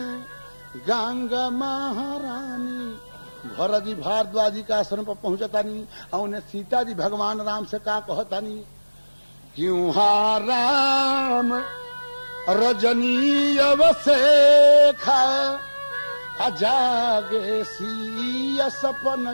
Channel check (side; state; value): both; inverted; correlation -1.00